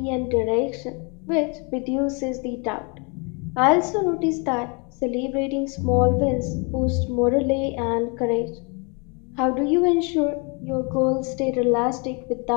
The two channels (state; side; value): quieter; right; 32.9 dB